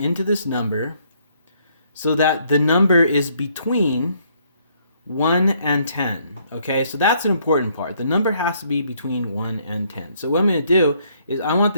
this number so that the number is between 1 and 10. Okay, so that's an important part. The number has to be between 1 and 10. So what I'm going to do is I want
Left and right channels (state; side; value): inverted; both; correlation -0.68